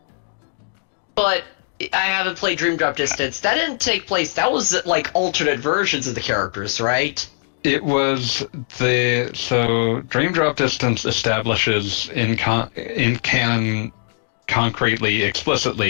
But I haven't played Dream Drop Distance. That didn't take place. That was like alternate versions of the characters, right? It was so Dream Drop Distance establishes in canon concretely,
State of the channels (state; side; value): silent; right; digital silence